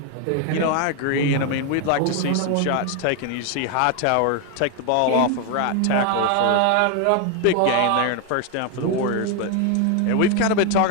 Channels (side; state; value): both; different; correlation 0.01